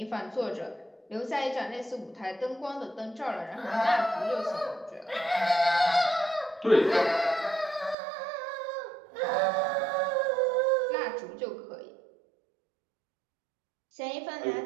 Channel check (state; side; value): drops out; left; at 8.0 s